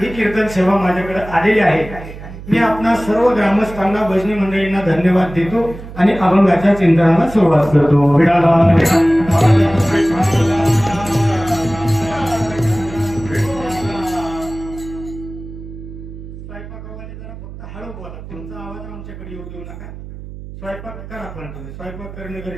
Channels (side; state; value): right; noise; hum, 13 dB below the sound